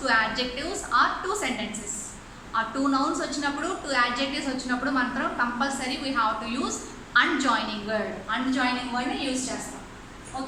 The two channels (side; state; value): both; identical; correlation 1.00